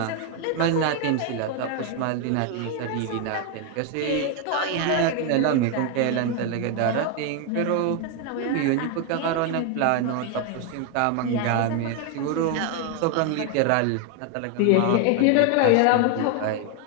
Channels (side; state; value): both; different; correlation 0.01